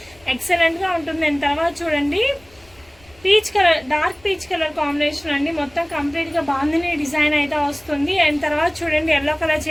ఎక్సలెంట్గా ఉంటుంది. అండ్ తర్వాత చూడండి peach colour dark peach colour combination అండి, మొత్తం కంప్లీట్గా బాందిని డిజైన్ అయితే వస్తుంది. అండ్ తర్వాత చూడండి ఎల్లో కలర్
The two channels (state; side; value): noise; left; rumble, 28 dB below the sound